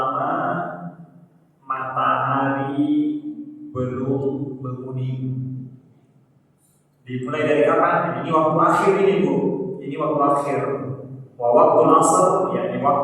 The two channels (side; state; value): both; identical; correlation 1.00